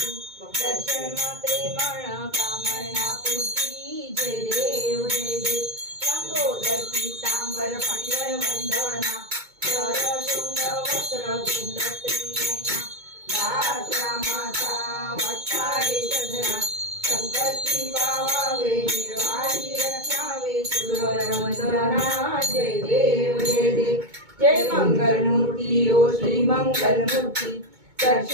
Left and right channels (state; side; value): late; left; 2.2 ms